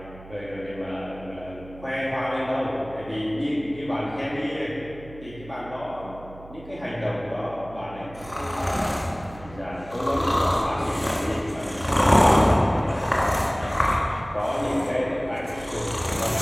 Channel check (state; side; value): noise; right; hum, 18 dB below the sound